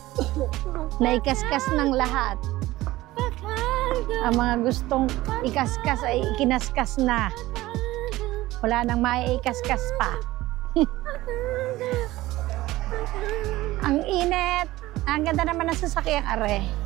Naikaskas ng lahat. Ang mga gustong ikaskas ay ikinaskas na. Wala nang maiikaskas pa. Ang init. Ang ganda naman ng sasakyang are.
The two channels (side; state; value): left; quieter; 17.4 dB